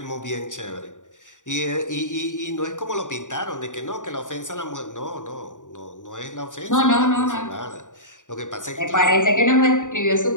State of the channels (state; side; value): late; right; 0.86 ms